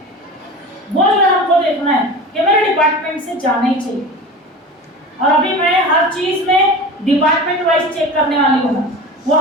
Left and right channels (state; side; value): normal; both; correlation 0.32